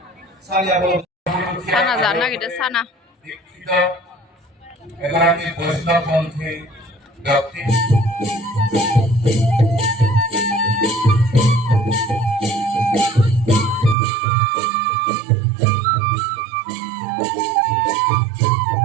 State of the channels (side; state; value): left; drops out; at 14.0 s